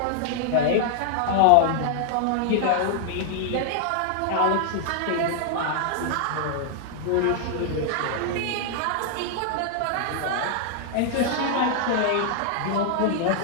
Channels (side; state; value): both; different; correlation 0.00